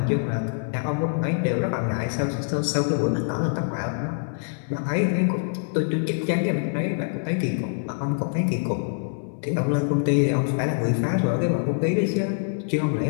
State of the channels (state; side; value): silent; right; 62 dB below the other